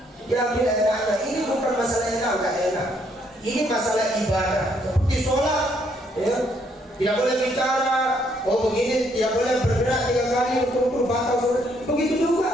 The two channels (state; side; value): normal; both; correlation 0.70